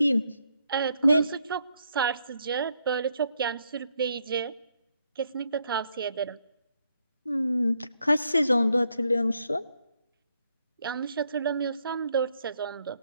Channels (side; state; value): both; inverted; correlation -0.75